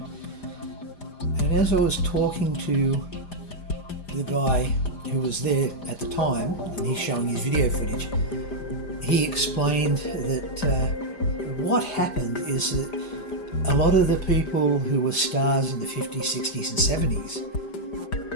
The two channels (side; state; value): right; late; 5.0 ms